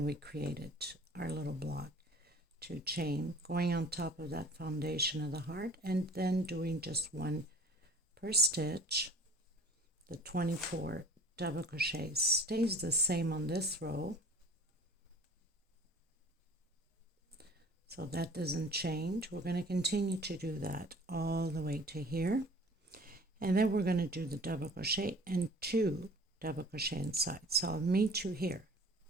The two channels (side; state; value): both; normal; correlation 0.47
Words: we created our little block. 2 chain, going on top of that foundation of the heart, and then doing just 1 per stitch. The 24 double crochets stays the same on this row, so that doesn't change. We're going to continue to do that all the way to here, and then we're going to do the double crochet and 2 double crochet inside. So I'll meet you here,